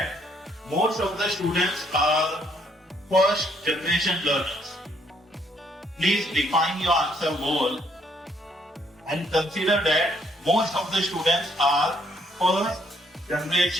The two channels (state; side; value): normal; both; correlation 0.68